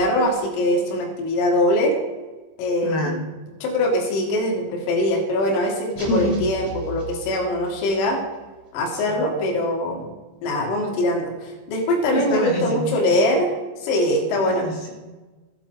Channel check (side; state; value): right; late; 25 ms